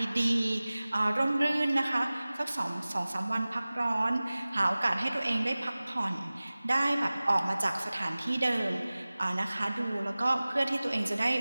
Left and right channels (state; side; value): inverted; both; correlation -0.98